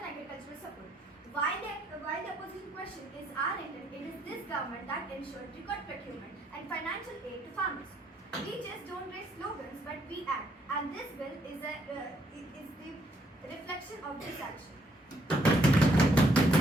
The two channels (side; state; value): both; normal; correlation 0.71